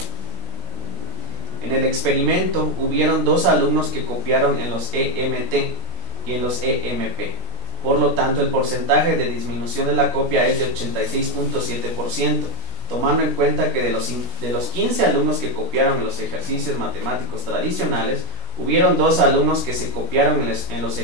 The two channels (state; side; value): late; left; 16 ms